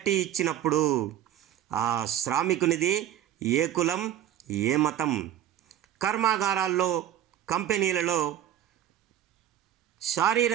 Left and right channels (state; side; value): quieter; left; 11.1 dB